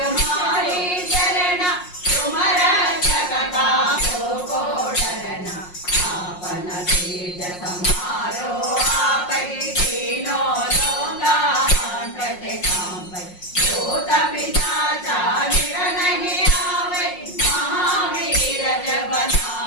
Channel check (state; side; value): late; right; 5.5 ms